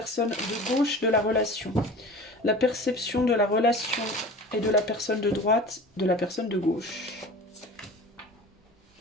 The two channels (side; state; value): both; normal; correlation 0.38